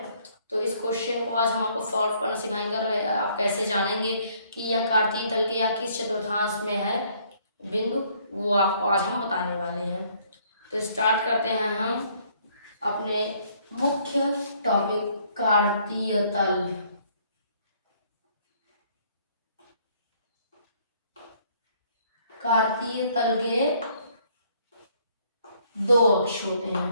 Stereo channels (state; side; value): inverted; both; correlation -0.64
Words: तो इस क्वेश्चन को आज हम आपको सॉल्व करना सिखाएंगे और आप कैसे जानेंगे कि यह कार्तीय तल के या किस चतुर्थांश में है बिंदु, वो आपको आज हम बताने वाले हैं। तो स्टार्ट करते हैं हम अपने मुख्य टॉपिक कार्तीय तल। कार्तीय तल के दो अक्ष होते